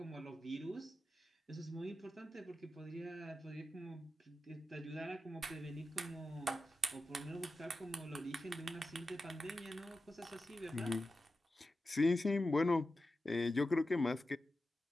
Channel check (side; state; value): both; normal; correlation 0.92